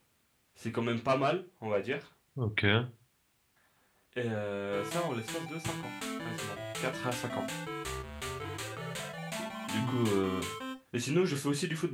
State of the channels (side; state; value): both; identical; correlation 1.00